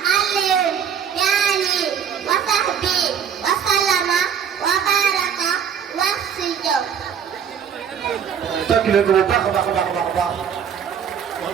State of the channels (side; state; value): left; quieter; 8.0 dB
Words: alayhi wa sahbi wa sallama wa baraka wax si jaw tàkk leen ko bu baax a baax a baax a baax wax